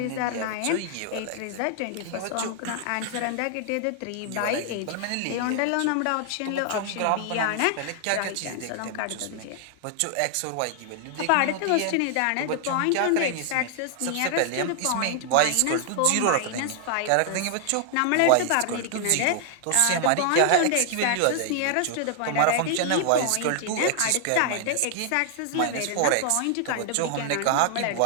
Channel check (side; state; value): both; different; correlation 0.00